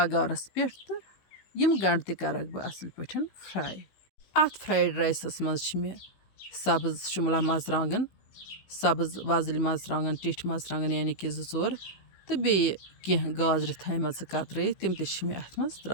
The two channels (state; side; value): late; right; 15 ms